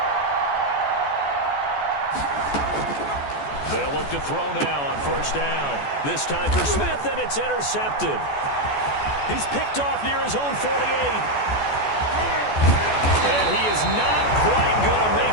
They'll look to throw now on first down. This time for Smith, and it's intercepted. He's picked off near his own 48. And he is not quite going to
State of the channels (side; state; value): right; late; 14 ms